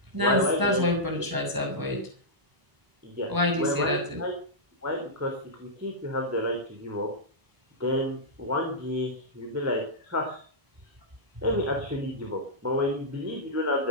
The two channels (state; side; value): late; left; 1.0 ms